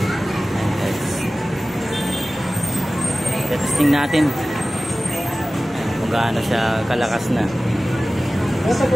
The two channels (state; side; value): normal; both; correlation 0.96